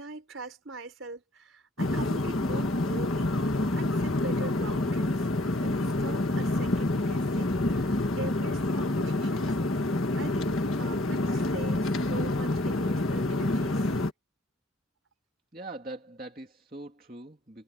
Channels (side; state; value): both; normal; correlation 0.61